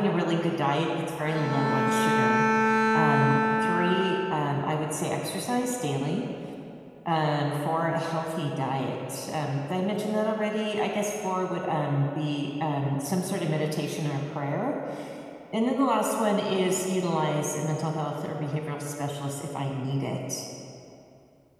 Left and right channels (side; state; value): both; identical; correlation 1.00